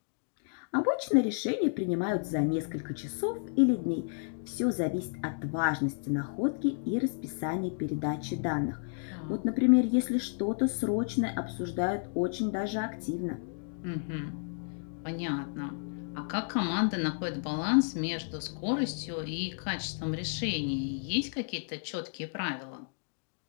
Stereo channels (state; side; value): silent; right; digital silence